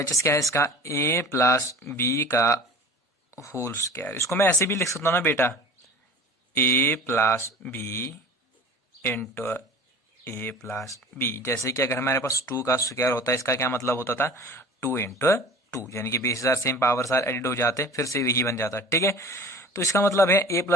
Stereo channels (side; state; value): both; normal; correlation 0.40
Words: क्या है इसका, a प्लस बी का होल स्क्वायर। इसको मैं ऐसे भी लिख सकता हूं ना बेटा, a plus B into a plus B. जैसे कि अगर हमारे पास 2 का स्क्वायर होता है, इसका क्या मतलब होता था, 2 इंटू 2, यानी कि base are same powers are added हो जाते, फिर से यही बन जाता, ठीक है। तो इसका मतलब है a